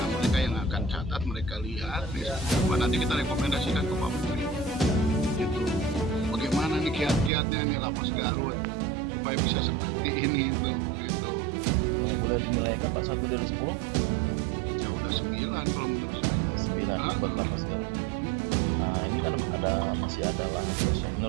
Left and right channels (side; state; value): left; drops out; at 7.3 s